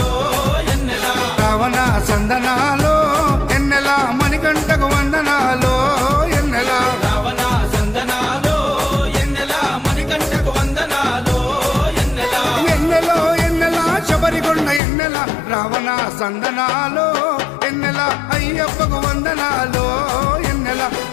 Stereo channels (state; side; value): drops out; right; at 14.8 s